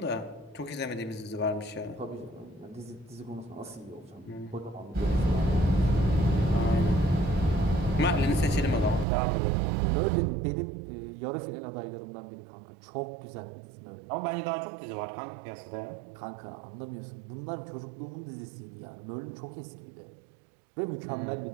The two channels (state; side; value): drops out; left; at 9.1 s